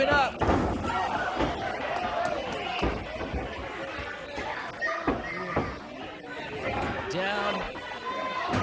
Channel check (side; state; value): both; identical; correlation 1.00